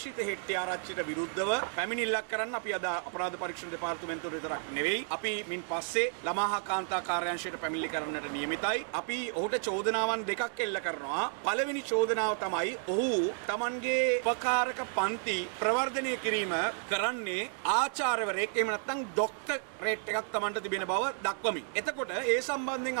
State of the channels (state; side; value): silent; left; 56 dB below the other